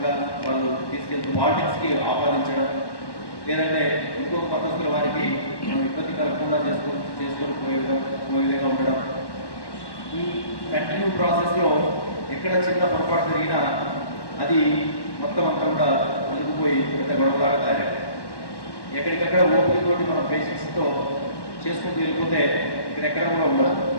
వాళ్ళు తీసుకెళ్తూ పాలిటిక్స్కి ఆపాదించడం, లేదంటే ఇంకొక మతస్థుల వారికి మనం ఇబ్బంది కలగకుండా చేసుకొని పోయే విధంగా ఉండడం, ఈ కంటిన్యూ ప్రాసెస్లో ఎక్కడ చిన్న పొరపాటు జరిగినా అది మొత్తం అంతా కూడా అలుగుపోయి పెద్ద గొడవలాగా తయారయ్యాయి. ఎక్కడికక్కడ ఓపికతోటి మనం పేషెంట్స్తో చేసుకుంటూ వెళ్ళిపోతే ఇక్కడెక్కడ కూడా ఉండదు,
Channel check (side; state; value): right; late; 1.1 ms